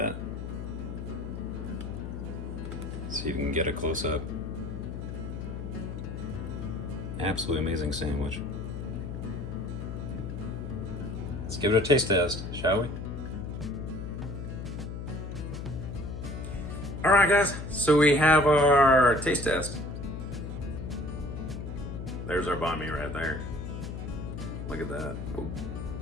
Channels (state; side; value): noise; left; hum, 6 dB below the sound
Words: See if you can get a close up. Absolutely amazing sandwich. Let's give it a taste test, shall we? All right, guys, so we have our taste test. There's our banh mi right there. Look at that. Oh.